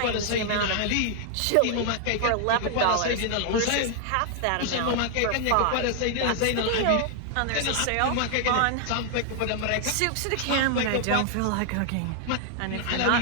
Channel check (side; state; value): both; different; correlation 0.00